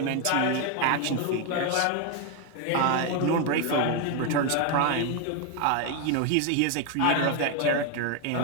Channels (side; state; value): both; different; correlation 0.01